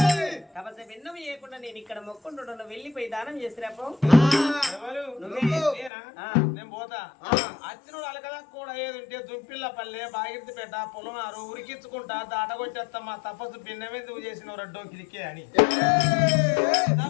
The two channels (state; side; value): drops out; right; at 5.9 s